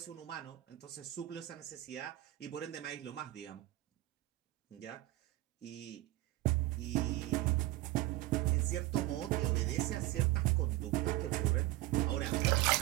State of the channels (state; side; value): quieter; left; 17.0 dB